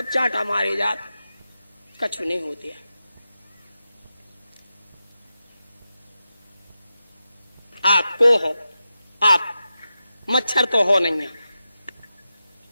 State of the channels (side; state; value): both; inverted; correlation -0.91